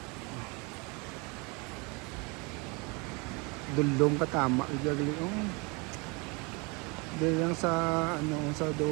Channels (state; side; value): quieter; left; 29.2 dB